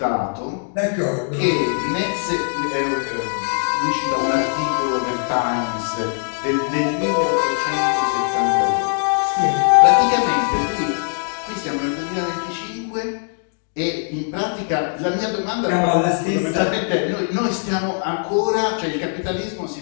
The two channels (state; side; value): silent; right; 59 dB below the other